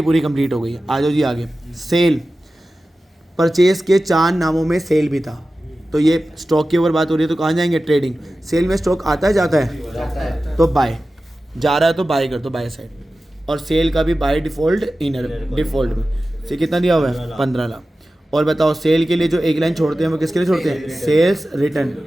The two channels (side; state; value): both; normal; correlation 0.95